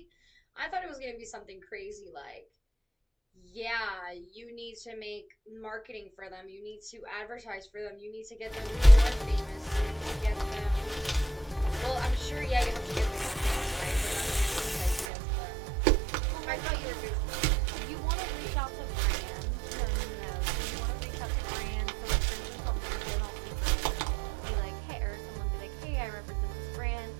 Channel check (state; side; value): drops out; left; at 15.1 s